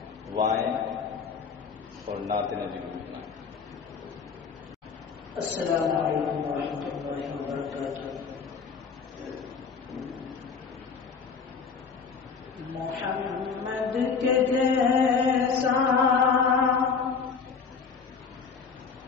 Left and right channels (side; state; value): right; quieter; 5.7 dB